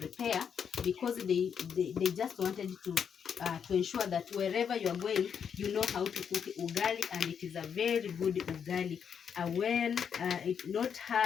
because they just wanted to ensure that wherever you are going, you know how to cook ugali, and it is a very good ugali. Well, it's not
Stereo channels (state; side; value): quieter; right; 7.4 dB